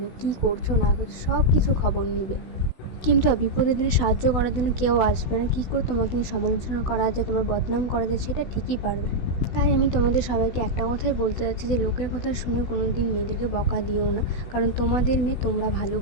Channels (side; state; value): right; late; 16 ms